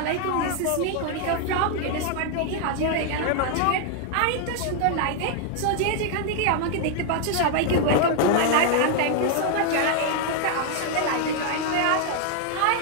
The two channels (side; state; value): both; different; correlation 0.00